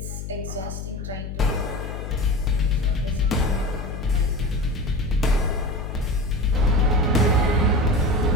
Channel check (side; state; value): left; noise; hum, 7 dB below the sound